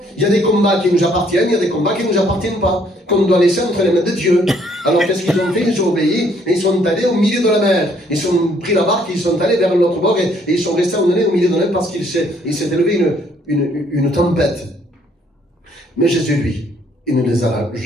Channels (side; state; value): both; normal; correlation 0.65